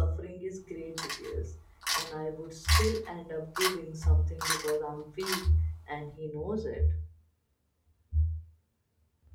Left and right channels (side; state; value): both; identical; correlation 1.00